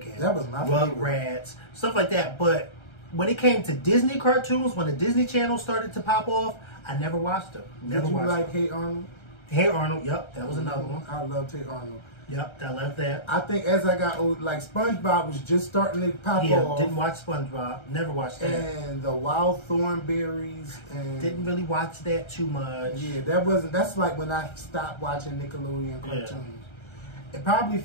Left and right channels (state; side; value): late; right; 1.3 ms